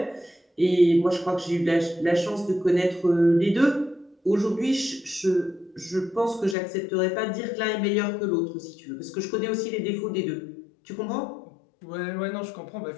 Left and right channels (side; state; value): right; drops out; at 6.6 s